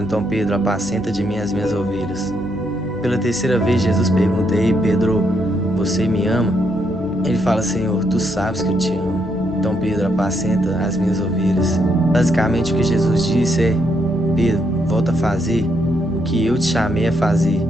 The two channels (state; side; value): normal; both; correlation 0.76